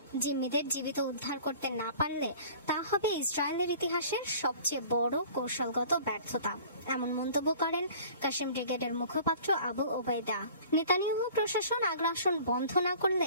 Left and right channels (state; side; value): inverted; both; correlation -0.47